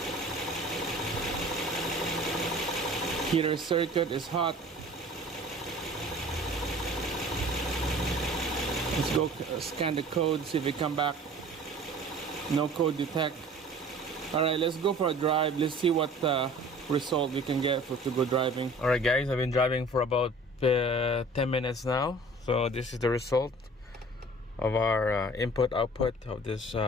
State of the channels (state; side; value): normal; both; correlation 0.46